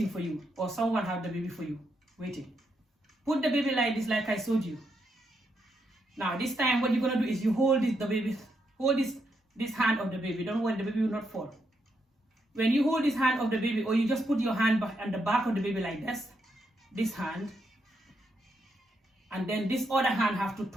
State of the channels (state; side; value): normal; both; correlation 0.80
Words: for you, or someone have the baby for you, waiting. Put the baby like this, like I showed you. Now this time what you're gonna do is you hold this hand of the baby. Don't worry, the baby will not fall. When you hold this hand of the baby, or you just put your hand on the back of the baby like this hand, and then this other hand have to